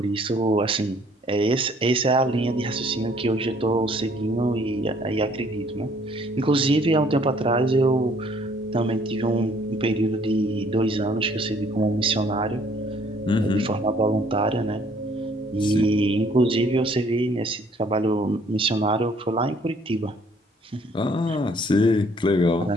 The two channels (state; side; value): normal; both; correlation 0.61